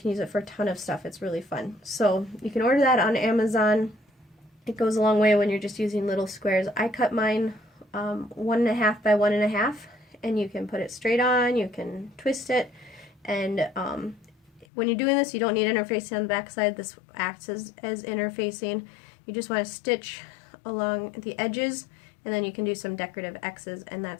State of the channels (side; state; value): right; drops out; at 14.7 s